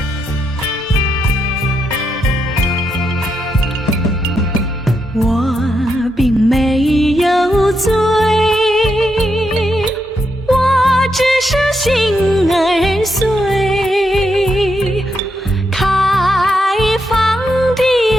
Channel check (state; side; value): normal; both; correlation 0.82